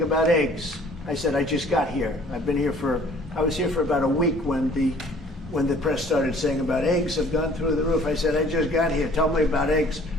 about eggs. I said, I just got here. I was here for about a week when the press started saying about eggs have gone through the roof. I said, I just got here. Tell me about eggs.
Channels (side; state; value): both; normal; correlation 0.54